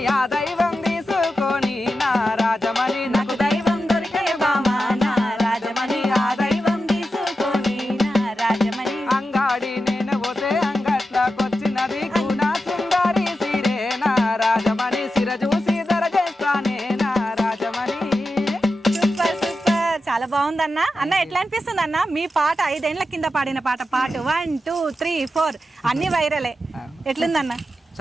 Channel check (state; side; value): normal; both; correlation 0.90